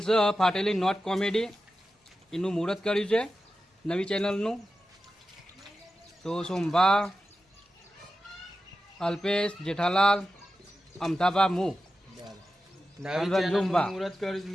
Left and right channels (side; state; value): both; normal; correlation 0.92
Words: છે ફાટેલી નોટ કોમેડી, એનું મુહૂર્ત કર્યું છે નવી ચેનલનું. તો સોમભા, અલ્પેશ, જેઠાલાલ, અમથાભા, હું રંજુભા મુહૂર્ત કર્યું